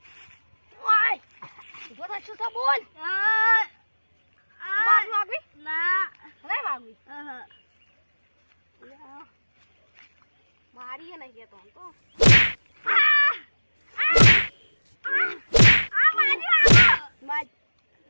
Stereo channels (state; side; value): inverted; both; correlation -1.00